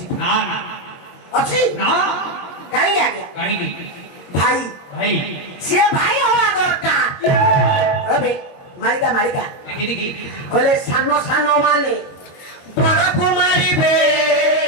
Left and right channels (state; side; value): late; right; 22 ms